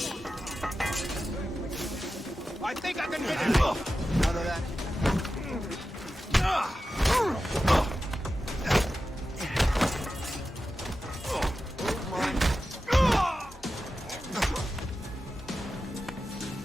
I think I can hit it. Out of that.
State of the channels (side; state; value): both; normal; correlation 0.92